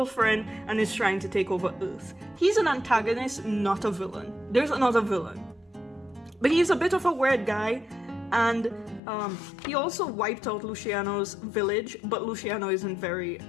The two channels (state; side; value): drops out; right; at 9.0 s